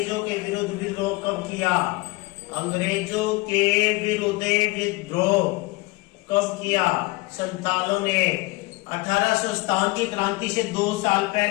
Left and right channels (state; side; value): quieter; right; 23.4 dB